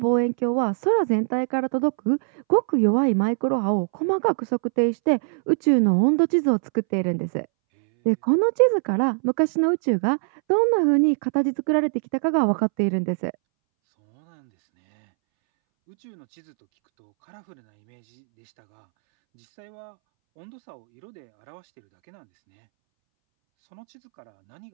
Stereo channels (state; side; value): silent; left; 64 dB below the other